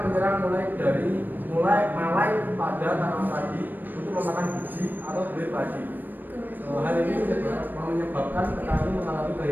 menyerang mulai malai pada tanaman padi untuk memakan biji atau buih padi. Hal ini menyebabkan petani mengalami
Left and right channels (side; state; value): left; late; 0.091 ms